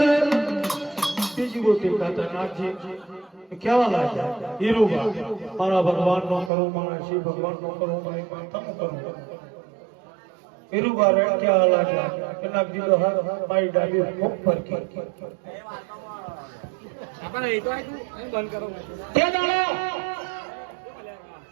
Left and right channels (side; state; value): left; drops out; at 6.5 s